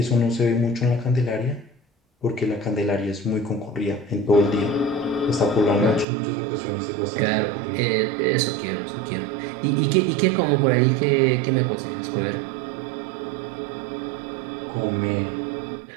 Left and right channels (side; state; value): left; drops out; at 6.1 s